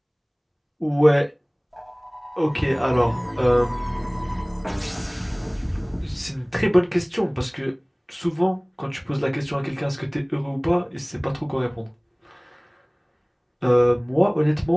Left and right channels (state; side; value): identical; both; correlation 1.00